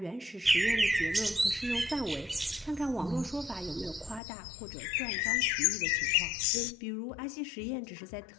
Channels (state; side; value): drops out; right; at 4.2 s